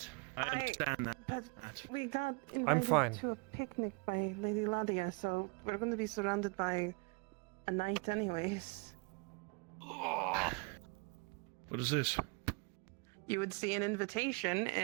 I understand that. But we got I'm invited fine. to a picnic by Lady Ladia, so we're going to be surrounded by a knight anyways. What is this? You would see an invitation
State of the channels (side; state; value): left; quieter; 31.0 dB